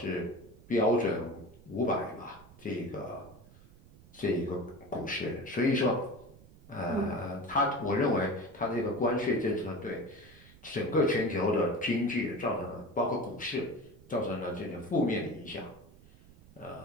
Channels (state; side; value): noise; right; rumble, 23 dB below the sound